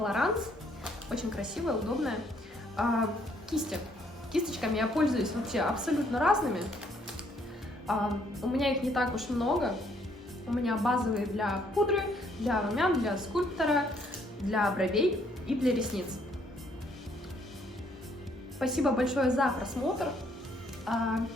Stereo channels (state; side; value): normal; both; correlation 0.67